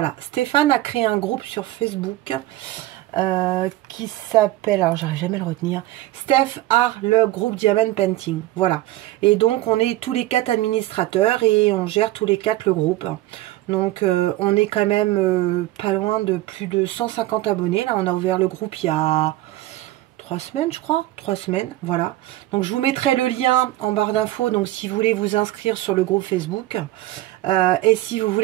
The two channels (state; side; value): quieter; left; 16.3 dB